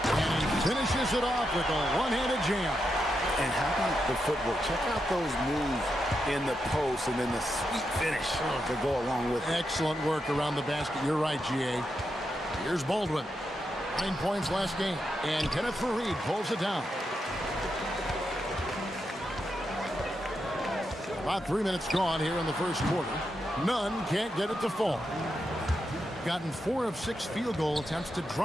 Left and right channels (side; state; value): both; normal; correlation 0.85